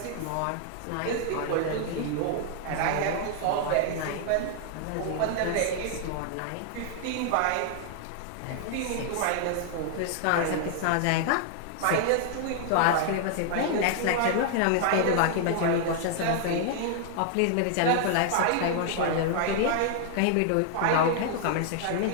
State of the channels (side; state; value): both; different; correlation 0.00